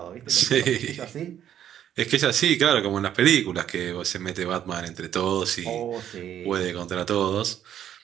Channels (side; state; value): left; quieter; 10.4 dB